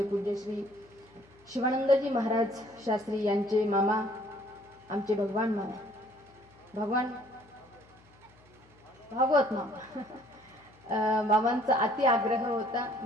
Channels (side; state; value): left; noise; hum, 28 dB below the sound